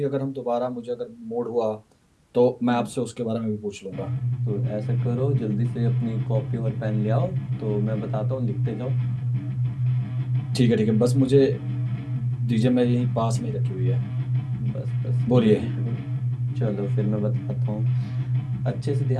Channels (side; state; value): both; identical; correlation 1.00